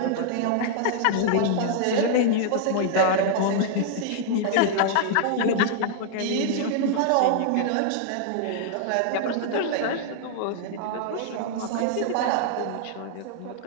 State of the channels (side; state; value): both; different; correlation -0.01